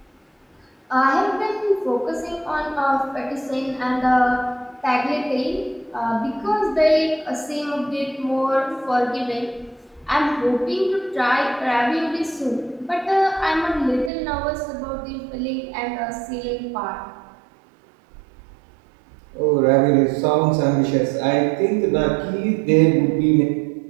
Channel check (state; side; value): drops out; left; at 14.1 s